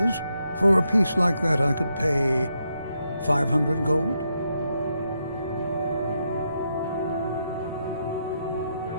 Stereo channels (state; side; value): inverted; both; correlation -0.81